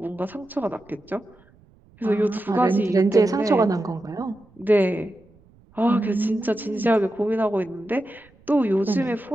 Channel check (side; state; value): right; noise; rumble, 29 dB below the sound